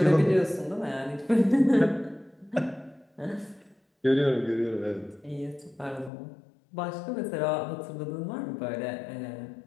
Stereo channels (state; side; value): drops out; right; at 6.1 s